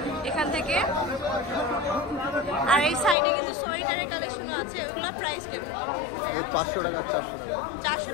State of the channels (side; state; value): right; drops out; at 3.2 s